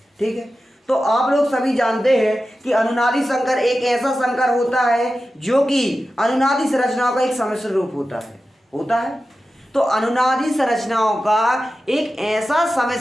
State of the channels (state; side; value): normal; both; correlation 0.93